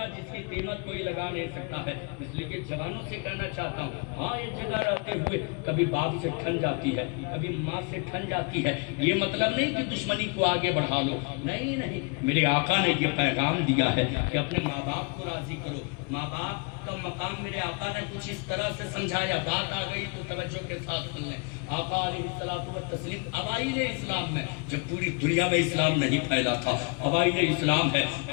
جس کی قیمت کوئی لگا نہیں سکتا ہے. اس لیے کہ جوانوں سے کہنا چاہتا ہوں، ماں ایک جگہ رہتے ہوئے کبھی باپ سے ٹھن جاتی ہے، کبھی ماں سے ٹھن جاتی ہے. یہ مطلب نہیں کہ دشمنی کو آگے بڑھا لو، نہیں نہیں، میرے آقا نے یہ پیغام دیا ہے کہ اپنے ماں باپ کو راضی کرو. ماں باپ کا مقام میرے آقا نے کچھ اس طرح سے سمجھایا، بات آ گئی تو توجہ کے ساتھ سن لیں. آقا علیہ الصلوۃ والتسلیم اوائل اسلام میں، جب پوری دنیا میں اسلام نہیں پھیلا تھا، اوائل اسلام ہے،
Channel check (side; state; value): right; quieter; 32.5 dB